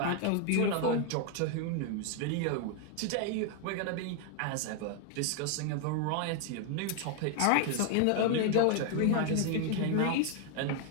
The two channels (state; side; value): different; both; correlation 0.00